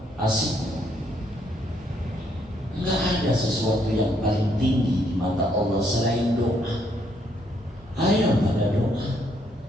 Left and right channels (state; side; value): normal; both; correlation 0.71